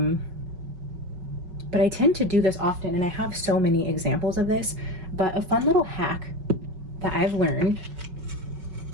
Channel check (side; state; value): left; late; 5.3 ms